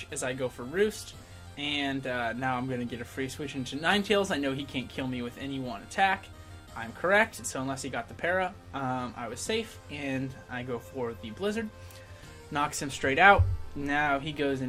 as I go for Roost. And now I'm going to get a free switch into Ninetales. I know he can't kill me with any one attack. I'm correct. So unless he got the para, I was safe. And I go for the Blizzard. Knocks him straight out. Now he goes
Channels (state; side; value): identical; both; correlation 1.00